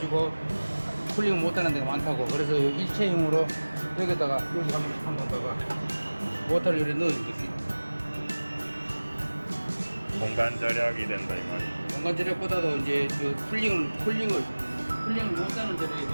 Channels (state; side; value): inverted; both; correlation -1.00